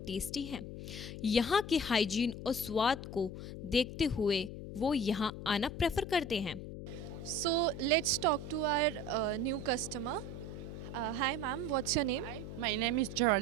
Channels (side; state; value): left; noise; hum, 9 dB below the sound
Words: टेस्टी हैं. यहाँ के हाइजीन और स्वाद को देखते हुए वो यहाँ आना प्रेफर करते हैं. So let's talk to our new customer. Hi ma'am, what's your name? Hi, my name is